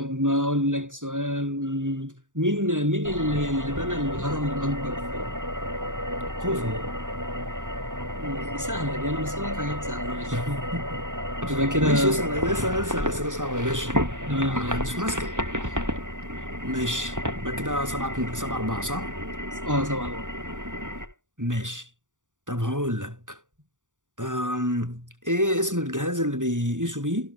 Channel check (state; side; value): late; left; 0.87 ms